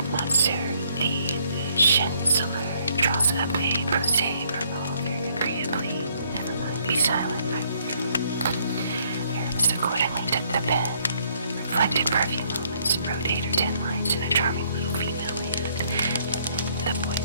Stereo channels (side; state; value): both; inverted; correlation -0.67